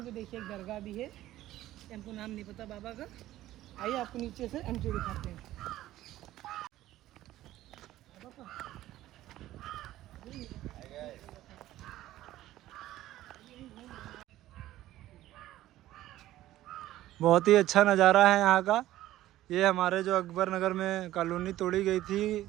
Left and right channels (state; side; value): quieter; left; 14.6 dB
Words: पे देखिए एक दरगाह भी है, हमको नाम नहीं पता बाबा का। आइए आपको नीचे से एंट्री दिखाते हैं। बहुत ही अच्छा नज़ारा है यहाँ का। ये हमारे जो अकबर नगर में कॉलोनी तोड़ी गई थी,